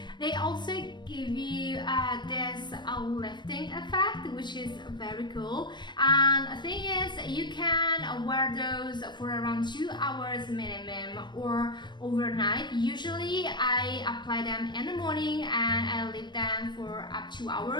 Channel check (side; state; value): right; late; 0.22 ms